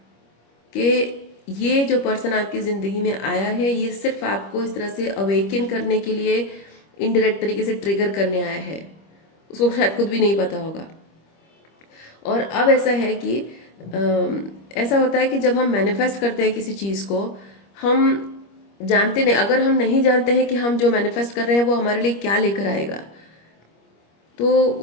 कि ये जो पर्सन आपकी ज़िंदगी में आया है, ये सिर्फ आपको इस तरह से अवेकन करने के लिए इनडायरेक्ट तरीके से ट्रिगर करने आया है। उसको शायद खुद भी नहीं पता होगा। और अब ऐसा है कि ऐसा होता है कि जब हम मैनिफेस्ट करते हैं किसी चीज़ को, हम जानते नहीं, अगर हम नहीं जानते हैं कि हम जो मैनिफेस्ट कर रहे हैं वो हमारे लिए क्या लेकर आएगा, तो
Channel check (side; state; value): right; late; 25 ms